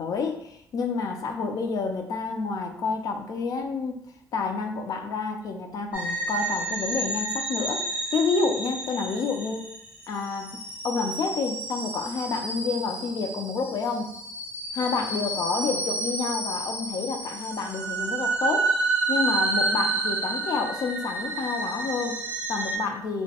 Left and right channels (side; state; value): both; normal; correlation 0.46